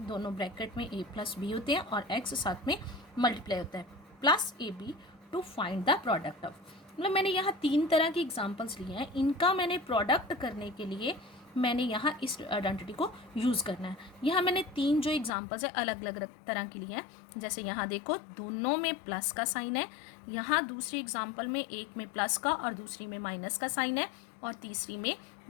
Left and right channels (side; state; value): right; drops out; at 15.3 s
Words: ब्रैकेट में a प्लस बी होते हैं और x साथ में मल्टीप्लाई होता है, plus a b to find the product of. मतलब मैंने यहाँ 3 तरह की एग्जांपल्स लिए हैं, इनका मैंने प्रोडक्ट करने के लिए मैंने यहाँ इस आइडेंटिटी को यूज़ करना है। यहाँ मैंने 3 जो एग्जांपल्स है अलग अलग तरह के लिए हैं। जैसे यहाँ देखो, दोनों में प्लस का साइन है, यहाँ दूसरी एग्जांपल में एक में प्लस का और दूसरी में माइनस का साइन है, और तीसरी में